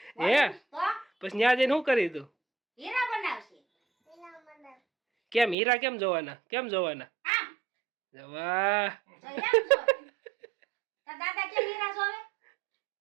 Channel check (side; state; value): left; drops out; at 5.6 s